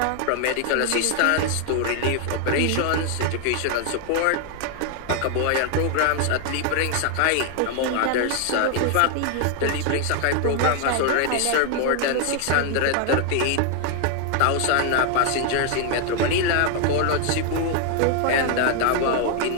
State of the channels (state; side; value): different; both; correlation 0.00